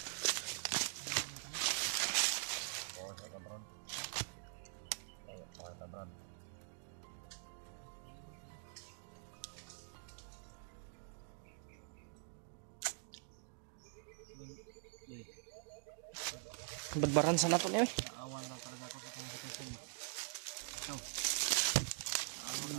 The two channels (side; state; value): left; silent; digital silence